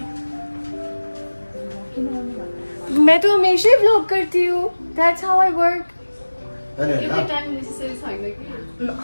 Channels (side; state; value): both; inverted; correlation -1.00